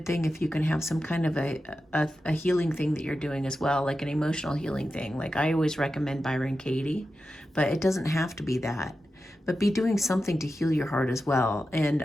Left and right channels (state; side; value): normal; both; correlation 0.91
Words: thing if you can have some kind of a healing thing that you're doing as well, like an emotional healing thing. Like I always recommend Byron Katie, but it doesn't have to be that. But be doing something to heal your heart as well.